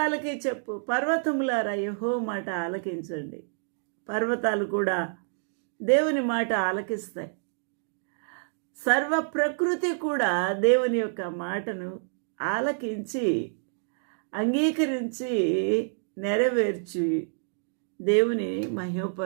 చెప్పు. పర్వతములారా యెహోవా మాట ఆలకించండి. పర్వతాలు కూడా దేవుని మాట ఆలకిస్తాయి. సర్వ ప్రకృతి కూడా దేవుని యొక్క మాటను ఆలకించి అంగీకరించి నెరవేర్చి దేవుని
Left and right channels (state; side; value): silent; left; digital silence